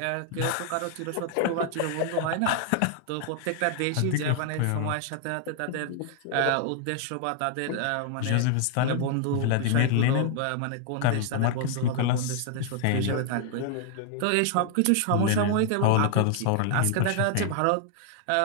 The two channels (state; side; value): different; both; correlation 0.00